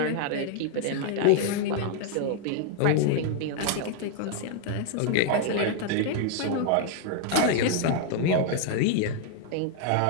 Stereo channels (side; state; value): both; different; correlation 0.00